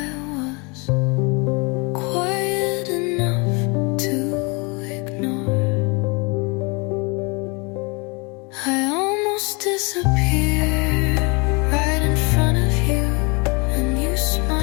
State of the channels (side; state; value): right; quieter; 30.3 dB